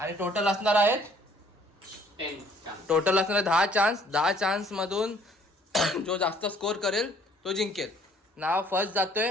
टोटल असणार आहेत 10 चान्स. 10 चान्स मधून जो जास्त स्कोर करेल तो जिंकेल. नाव फर्स्ट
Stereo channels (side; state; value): both; normal; correlation 0.59